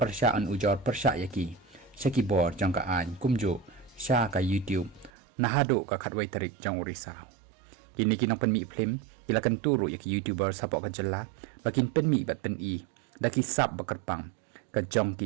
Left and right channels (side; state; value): left; drops out; at 5.1 s